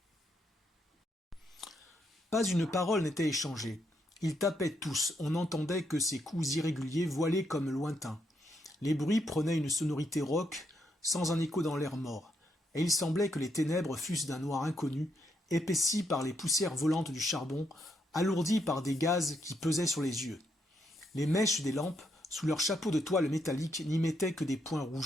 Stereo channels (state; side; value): normal; both; correlation 0.77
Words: Pas une parole n'était échangée. Ils tapaient tous, on n'entendait que ces coups irréguliers voilés comme lointains. Les bruits prenaient une sonorité rauque, sans un écho dans l'air mort, et il semblait que les ténèbres fussent d'un noir inconnu, épaissis par les poussières volantes du charbon, alourdis par des gaz qui pesaient sur les yeux. Les mèches des lampes, sous leurs chapeaux de toile métallique, n'y mettaient que des points